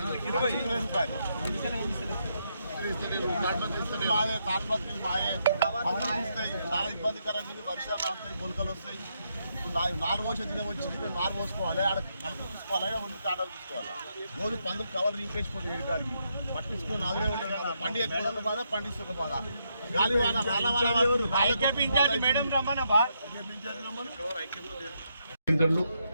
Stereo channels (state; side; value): inverted; both; correlation -0.79